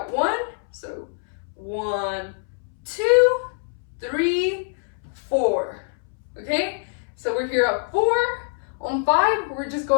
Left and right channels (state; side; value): silent; right; 62 dB below the other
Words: 1, so 1, 2, 3, 4. Okay? So we're here at 4. On 5, we're just